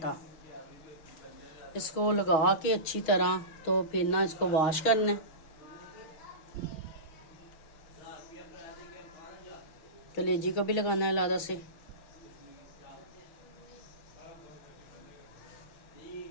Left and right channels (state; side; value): late; right; 6.2 ms